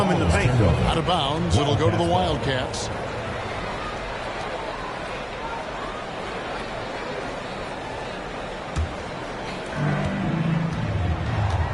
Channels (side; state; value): both; identical; correlation 1.00